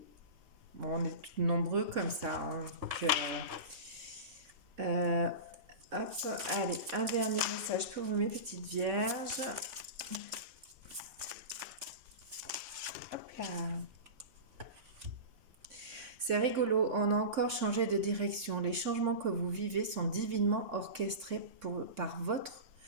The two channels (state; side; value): late; left; 3.6 ms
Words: Bon, on est nombreux comme ça. Hein, donc, hop, allez, un dernier message pour vous, mes petites vierges. Hop là. C'est rigolo, on a encore changé de direction. Les changements que vous vivez sont divinement orchestrés par votre